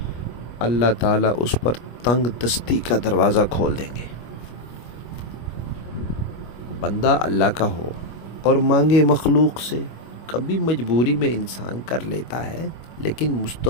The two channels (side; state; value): right; late; 25 ms